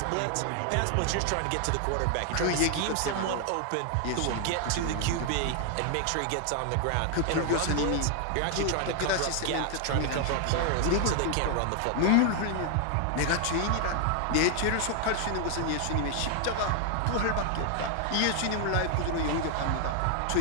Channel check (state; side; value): different; both; correlation 0.00